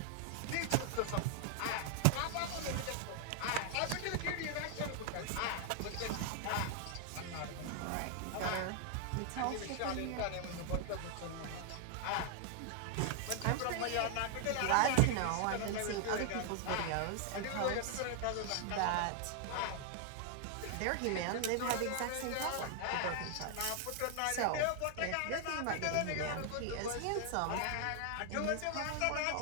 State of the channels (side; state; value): both; different; correlation 0.00